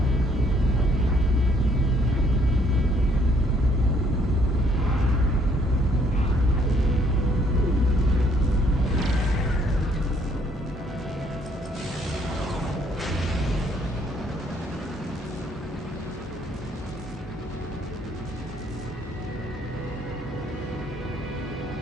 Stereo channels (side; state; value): both; normal; correlation 0.65